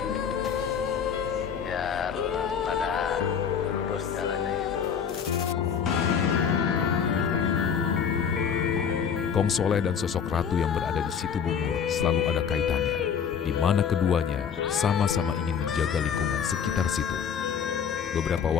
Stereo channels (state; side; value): quieter; right; 7.3 dB